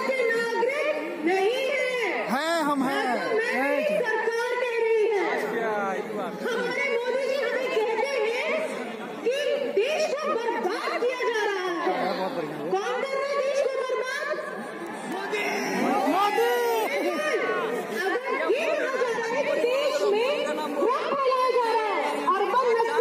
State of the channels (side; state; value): both; identical; correlation 1.00